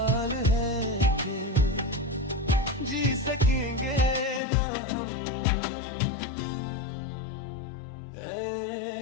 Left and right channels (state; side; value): drops out; right; at 4.4 s